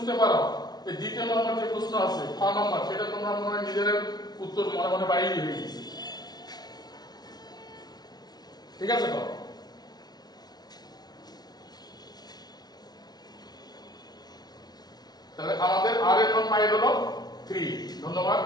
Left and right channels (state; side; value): late; right; 0.19 ms